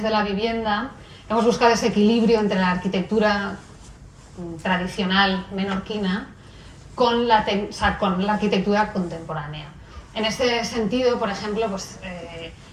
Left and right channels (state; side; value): identical; both; correlation 1.00